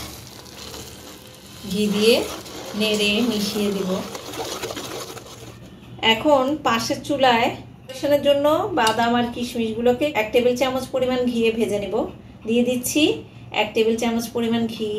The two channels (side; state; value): both; identical; correlation 1.00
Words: ঘি দিয়ে নেড়ে মিশিয়ে দেব। এখন পাশের চুলায় পরিবেশনের জন্য বাদাম আর কিশমিশগুলোকে 1 টেবিল চামচ পরিমাণ ঘিয়ে ভেজে নেব। দিয়ে দিচ্ছি 1 টেবিল চামচ পরিমাণ ঘি।